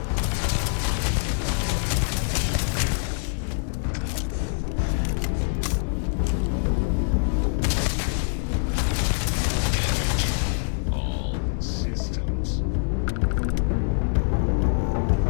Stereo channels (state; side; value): silent; right; digital silence